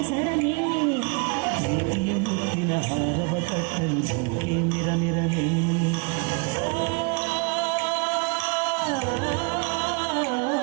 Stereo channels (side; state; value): left; quieter; 32.3 dB